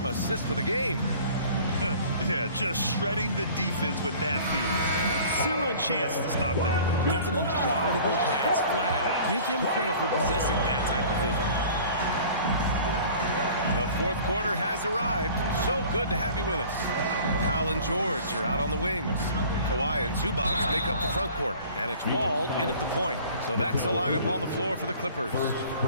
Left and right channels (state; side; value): inverted; both; correlation -0.47